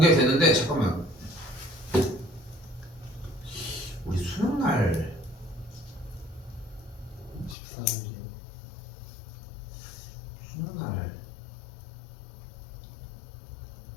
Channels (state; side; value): drops out; right; at 7.6 s